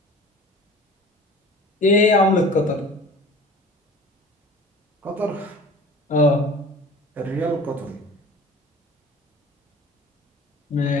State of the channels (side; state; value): both; normal; correlation 0.41